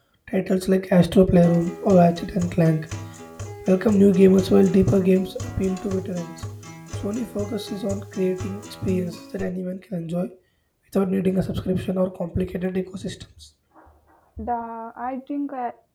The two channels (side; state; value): both; identical; correlation 1.00